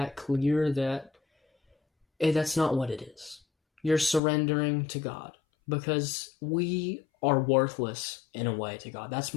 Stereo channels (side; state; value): right; drops out; at 4.2 s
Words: clear that that's not what it is. You're surrendering to God because we are worthless in a way to God. That's